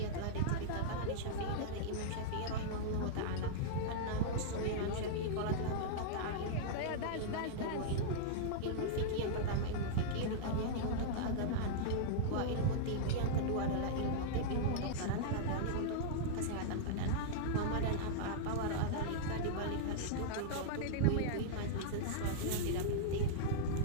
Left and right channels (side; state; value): both; different; correlation -0.02